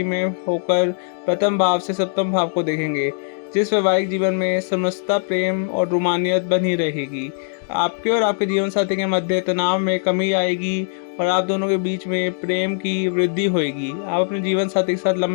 में होकर प्रथम भाव से सप्तम भाव को देखेंगे, जिस वैवाहिक जीवन में समरसता, प्रेम और रोमानियत बनी रहेगी। आपके और आपके जीवन साथी के मध्य तनाव में कमी आएगी और आप दोनों के बीच में प्रेम की वृद्धि होगी। आप अपने जीवन साथी के साथ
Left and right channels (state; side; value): silent; right; digital silence